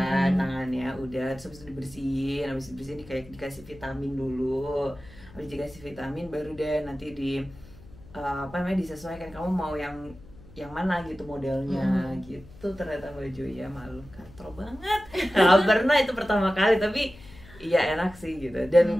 tangannya, udah terus habis itu dibersihin, habis dibersihin kayak dikasih vitamin dulu, habis dikasih vitamin baru deh nanti di disesuaikan kamu mau yang mana gitu modelnya gitu. Ternyata baju ya malu katro banget. Nggak pernah itu pertama kali, tapi iya enak sih gitu. Dan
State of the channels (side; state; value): left; noise; hum, 21 dB below the sound